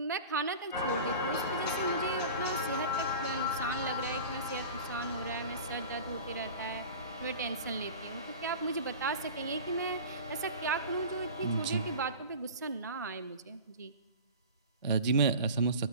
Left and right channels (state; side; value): inverted; both; correlation -0.36